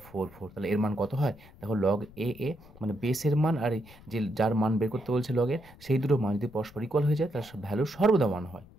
4 4, তাহলে এর মান কত হয় দেখো log a মানে বেসের মান আর যে যার মান বের করতে বলছে লগের সেই দুটো মান যদি পরস্পর ইকুয়াল হয়ে যায় তার ভ্যালু সর্বদা 1 হয়।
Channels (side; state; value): left; noise; rumble, 22 dB below the sound